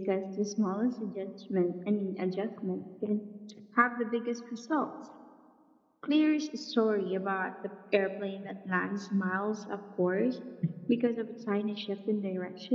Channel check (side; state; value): both; identical; correlation 1.00